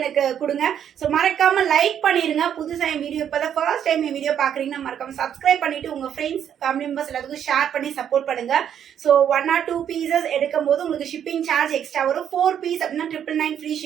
கொடுங்க. ஸோ மறக்காம லைக் பண்ணிருங்க. புதுசாக என் வீடியோ இப்போ தான் ஃபர்ஸ்ட் டைம் என் வீடியோ பார்க்குறீங்கன்னா மறக்காம சப்ஸ்கிரைப் பண்ணிட்டு உங்க ஃப்ரெண்ட்ஸ் ஃபேமிலி மெம்பர்ஸ் எல்லாத்துக்கும் ஷேர் பண்ணி சப்போர்ட் பண்ணுங்க. ஸோ 1 or 2 பீசஸ் எடுக்கும் போது உங்களுக்கு ஷிப்பிங் சார்ஜ் எக்ஸ்ட்ரா வரும். 4 பீஸ் அப்படின்னா 999 ஃப்ரீ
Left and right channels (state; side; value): quieter; left; 9.2 dB